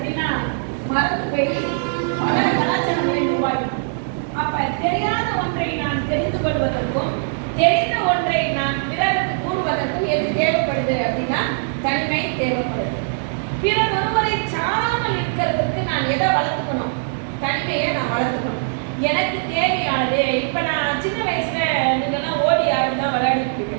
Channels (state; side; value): silent; left; 56 dB below the other